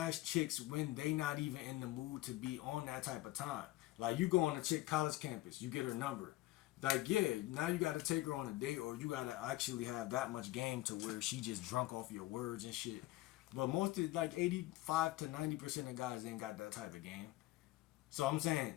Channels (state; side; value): quieter; right; 17.7 dB